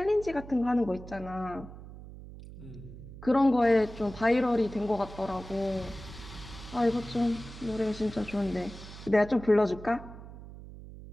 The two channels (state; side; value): noise; right; hum, 15 dB below the sound